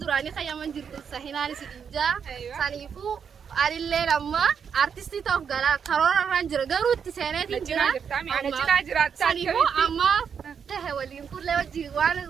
duraanii qayyaman jirtu sahinaanis ijaa saniifuu anillee amma artistii ta'uuf galaa karoorarraan jira garuu itti seeneetiin jira saniifuu amma tahe waliin kullee wajjin waan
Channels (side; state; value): left; quieter; 7.0 dB